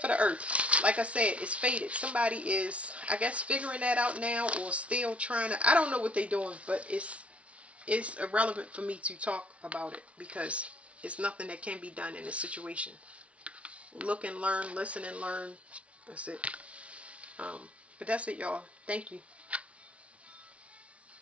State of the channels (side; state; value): left; late; 0.063 ms